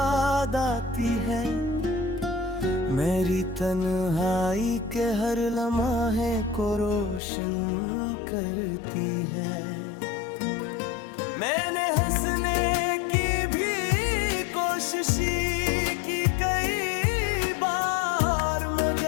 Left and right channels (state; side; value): drops out; right; at 7.2 s